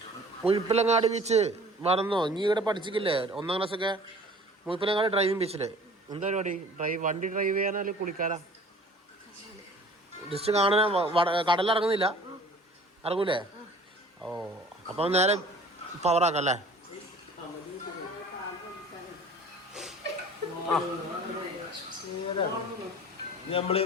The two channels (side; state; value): both; normal; correlation 0.47